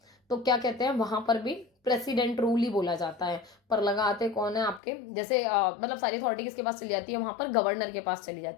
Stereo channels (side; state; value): right; drops out; at 4.8 s